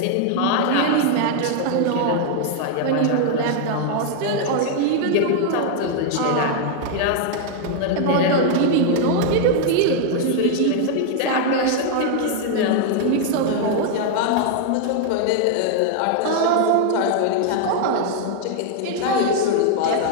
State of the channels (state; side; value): different; both; correlation 0.00